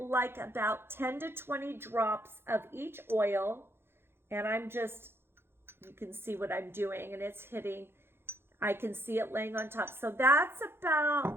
about 10 to 20 drops of each oil. And I'm just, you can see what I'm doing, and it's hitting, I can see it laying on top. So that's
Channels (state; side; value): late; left; 0.11 ms